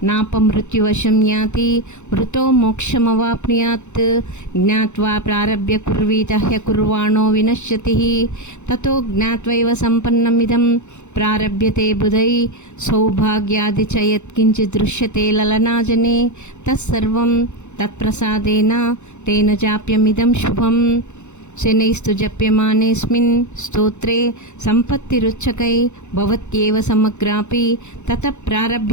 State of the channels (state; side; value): late; right; 0.83 ms